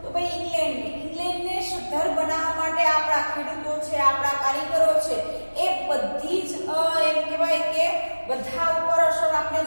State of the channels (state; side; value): inverted; both; correlation -1.00